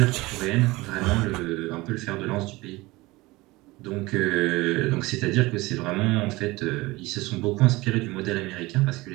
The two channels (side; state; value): left; quieter; 21.1 dB